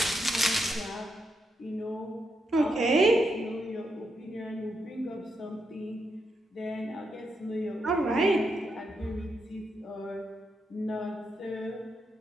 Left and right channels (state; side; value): normal; both; correlation 0.82